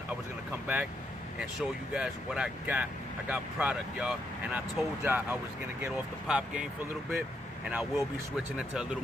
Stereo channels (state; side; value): normal; both; correlation 0.78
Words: was gonna come back and show you guys what I got. I got product, y'all, and I told y'all I was gonna get off the pop game for a little bit, and I will be switching into a little